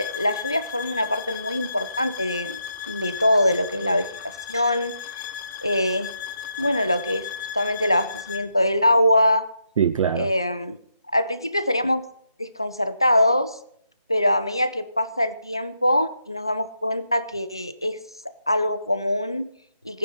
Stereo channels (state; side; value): inverted; both; correlation -0.80